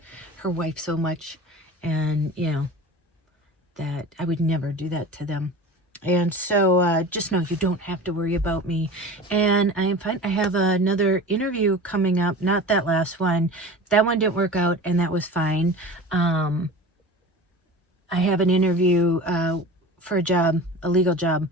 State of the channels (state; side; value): normal; both; correlation 0.35